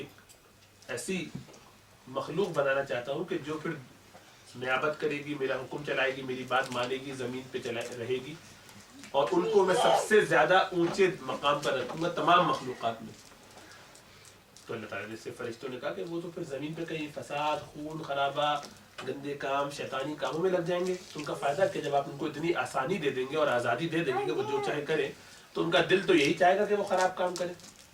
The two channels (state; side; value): identical; both; correlation 1.00